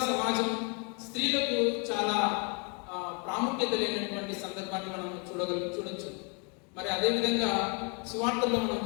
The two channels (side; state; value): right; quieter; 35.0 dB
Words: సమాజం స్త్రీలకు చాలా ప్రాముఖ్యత లేనటువంటి సందర్భాన్ని మనం చూడొచ్చు. మరి అదేవిధంగా సువార్తల్లో మనం